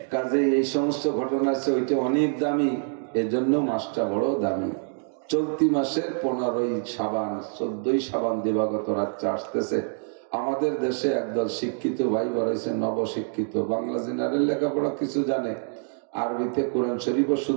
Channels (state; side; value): silent; left; 60 dB below the other